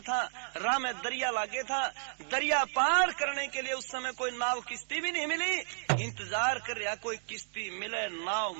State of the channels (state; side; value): silent; left; digital silence